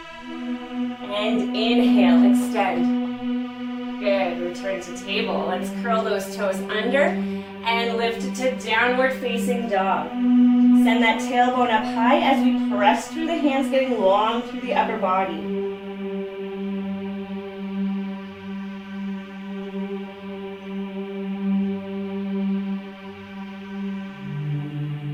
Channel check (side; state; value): both; identical; correlation 1.00